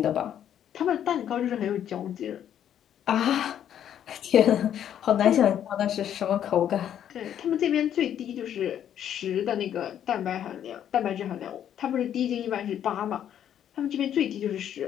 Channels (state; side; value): quieter; right; 10.0 dB